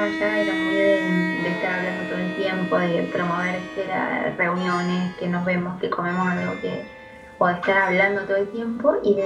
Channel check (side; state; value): both; identical; correlation 1.00